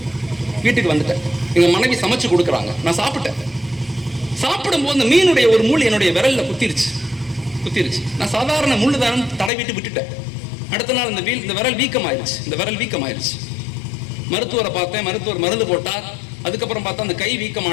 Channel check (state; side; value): drops out; right; at 9.5 s